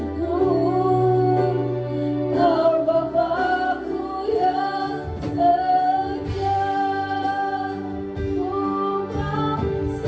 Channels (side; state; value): both; identical; correlation 1.00